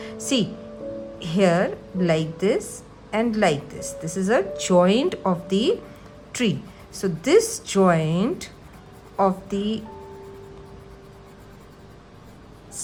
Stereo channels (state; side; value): identical; both; correlation 1.00